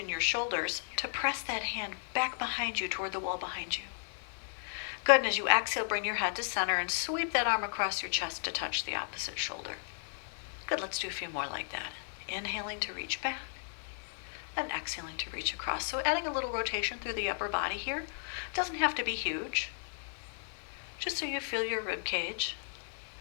your shoulders to press that hand back behind you toward the wall behind you. Good, and as you exhale, bring your head to center and sweep that arm across your chest to touch the opposite shoulder. Good, let's do a few more like that. Inhaling to reach back and exhaling to reach across. So adding a little rotation through the upper body here. Doesn't have to be huge. Just so you feel your rib cage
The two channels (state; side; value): silent; right; digital silence